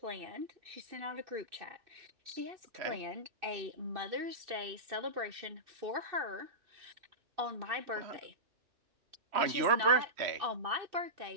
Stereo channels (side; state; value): left; late; 2.6 ms